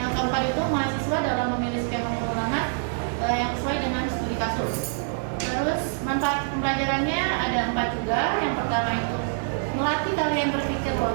keempat itu mahasiswa dalam memilih skema pengulangan yang sesuai dengan studi kasus. Terus manfaat pembelajarannya ada 4 juga. Yang pertama itu melatih kalian berpikir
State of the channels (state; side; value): silent; left; 61 dB below the other